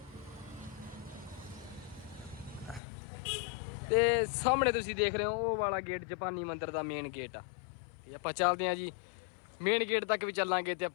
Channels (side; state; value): right; drops out; at 2.8 s